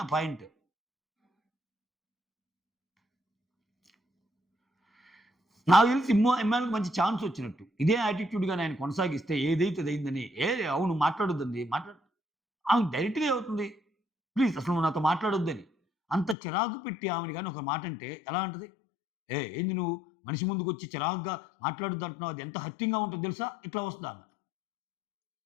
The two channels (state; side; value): drops out; right; at 16.4 s